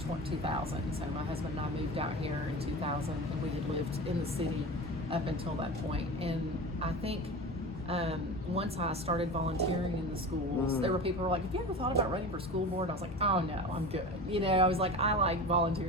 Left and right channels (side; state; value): both; normal; correlation 0.31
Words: So my husband and I moved out here in 2000, and we had lived in the city up until that point. And I think once I started volunteering in the schools, there were people who were like, have you ever thought about running for school board? I was like, oh no, I'm good. I was like, I like